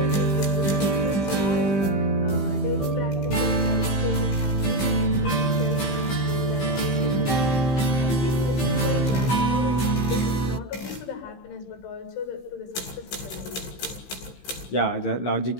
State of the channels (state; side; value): late; right; 15 ms